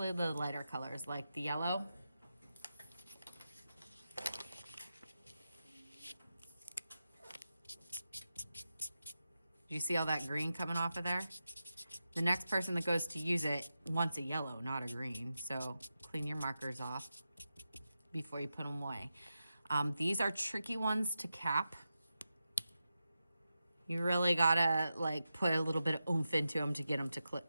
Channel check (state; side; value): inverted; both; correlation -0.90